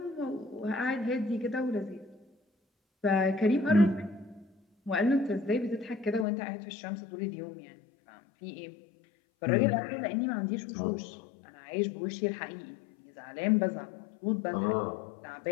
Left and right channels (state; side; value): drops out; right; at 6.2 s